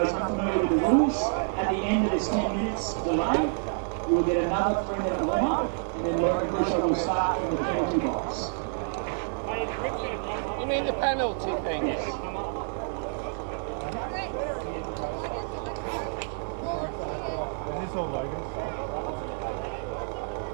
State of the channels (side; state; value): left; silent; digital silence